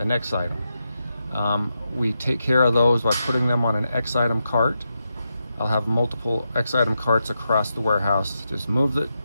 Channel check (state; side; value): inverted; both; correlation -0.86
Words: X item. We take care of those by putting them on an X item cart. I'll have multiple X item carts across the warehouse. Just move the